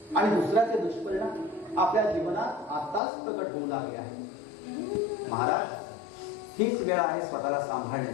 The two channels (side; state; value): right; drops out; at 3.0 s